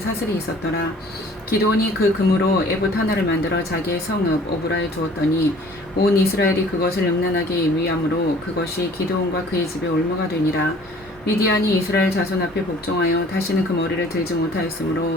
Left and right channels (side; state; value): both; normal; correlation 0.52